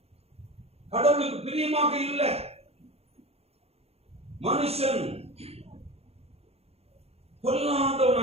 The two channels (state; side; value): late; left; 0.29 ms